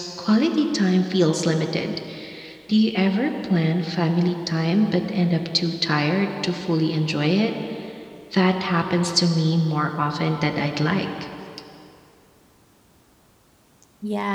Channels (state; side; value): identical; both; correlation 1.00